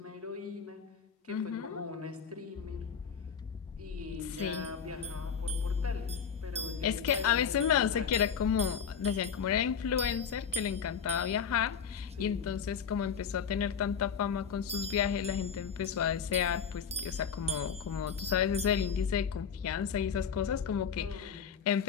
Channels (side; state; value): right; quieter; 7.0 dB